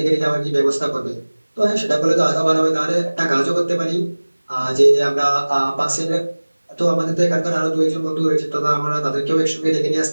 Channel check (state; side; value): inverted; both; correlation -1.00